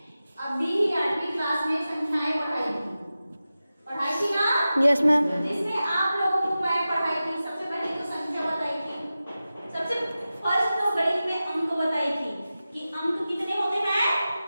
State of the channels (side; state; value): both; inverted; correlation -0.94